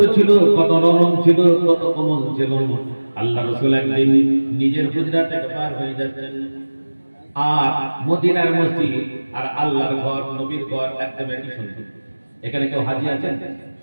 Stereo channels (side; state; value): both; inverted; correlation -1.00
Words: ছিল, কত নরম ছিল, কত কোমল ছিল। আল্লাহ রাসূল একদিন নিজের হুজরা থেকে পার হয়ে যাচ্ছেন, আর মদিনার মসজিদ আর আল্লাহর ঘর, নবীর ঘর একদম একই সুন্দর। এখানে কেউ হাজী আছেন?